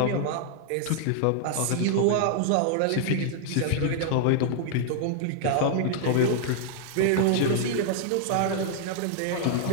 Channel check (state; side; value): different; both; correlation -0.01